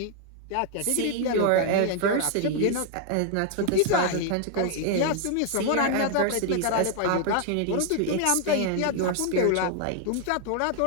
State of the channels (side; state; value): both; different; correlation 0.00